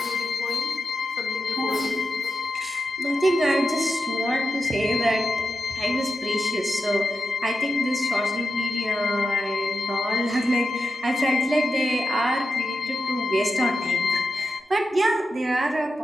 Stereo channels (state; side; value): normal; both; correlation 0.89